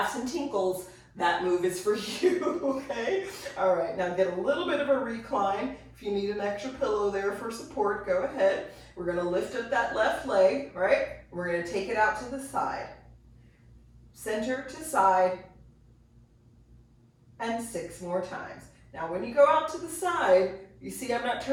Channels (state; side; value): identical; both; correlation 1.00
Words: and tinkles, that move is for you, okay? All right, now get a little bit of a recline. If you need an extra pillow there for support, go ahead. We're gonna lift up that left leg, right? We're gonna take it out to the side. Center to side, and 6 more times. Now when you go out to the side, you see I'm not